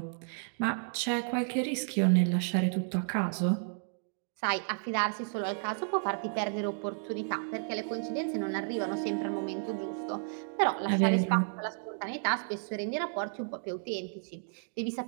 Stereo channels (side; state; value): left; silent; digital silence